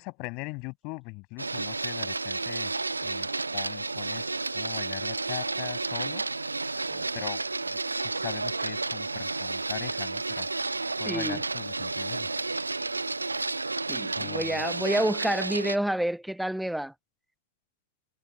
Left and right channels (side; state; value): both; inverted; correlation -0.32